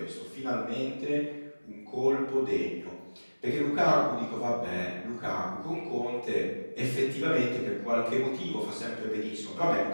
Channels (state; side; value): inverted; both; correlation -1.00